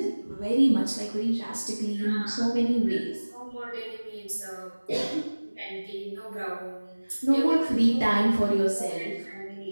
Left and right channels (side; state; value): both; inverted; correlation -1.00